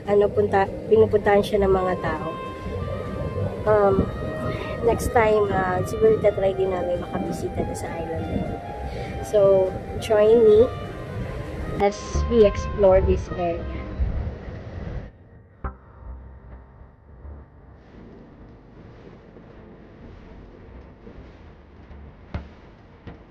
pinupuntahan siya ng mga tao. Next time, siguro tatry din namin makabisita sa island na yun. So, join me as we explore this area.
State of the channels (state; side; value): identical; both; correlation 1.00